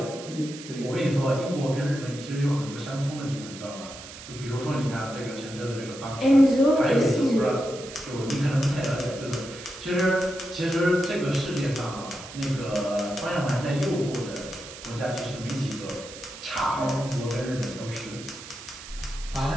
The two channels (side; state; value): right; noise; hiss, 14 dB below the sound